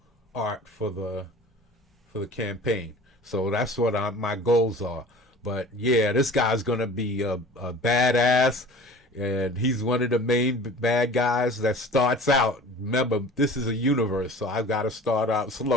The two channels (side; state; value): both; normal; correlation 0.43